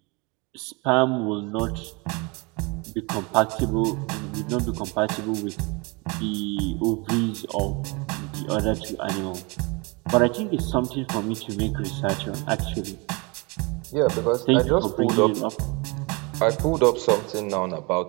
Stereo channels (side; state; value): left; quieter; 28.4 dB